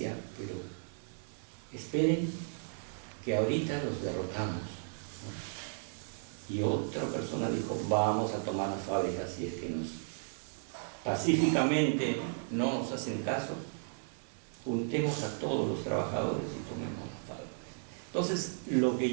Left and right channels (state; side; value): silent; left; digital silence